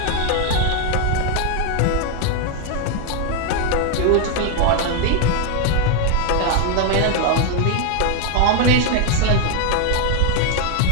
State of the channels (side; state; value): both; different; correlation 0.01